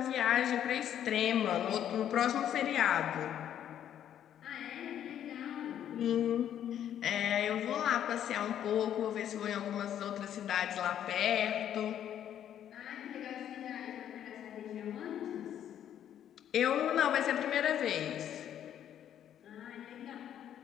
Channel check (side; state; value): right; quieter; 10.2 dB